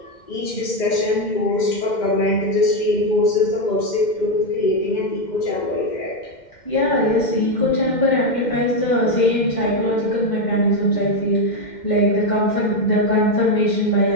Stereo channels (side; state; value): right; late; 2.1 ms